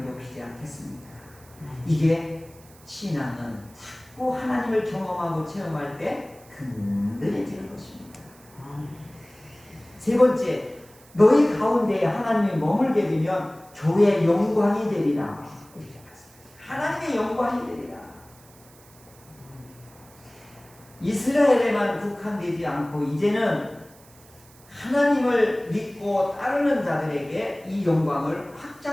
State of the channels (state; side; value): noise; right; hiss, 25 dB below the sound